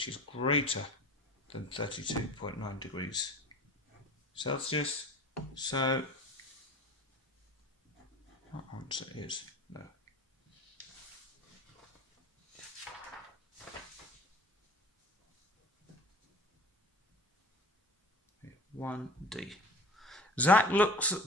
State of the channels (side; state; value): both; normal; correlation 0.39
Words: is greater than 32.9 degrees Celsius. So our answer is no. Okay, 1D. Zach looks